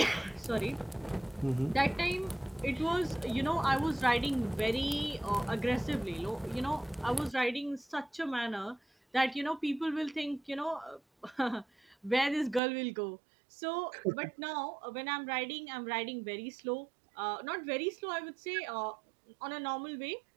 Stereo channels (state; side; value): drops out; left; at 12.6 s